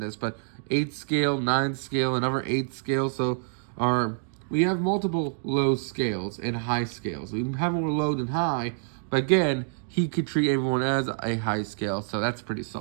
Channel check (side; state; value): left; silent; digital silence